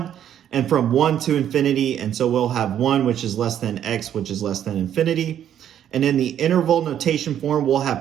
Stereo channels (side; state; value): left; quieter; 10.2 dB